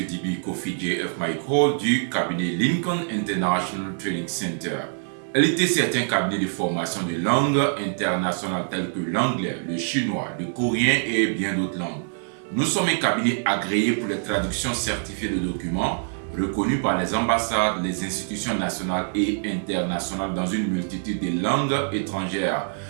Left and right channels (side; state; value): left; silent; digital silence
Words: Dibi Kofi JF Michael du cabinet Lincoln International Training Center. LITC est un cabinet de formation de langues internationales telles que l'anglais, le chinois, le coréen et bien d'autres langues. Nous sommes un cabinet agréé pour les traductions certifiées de documents, reconnus par les ambassades, les institutions nationales et internationales dans une multitude de langues étrangères.